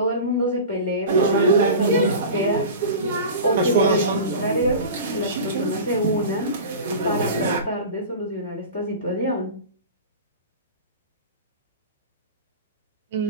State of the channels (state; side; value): inverted; both; correlation -0.32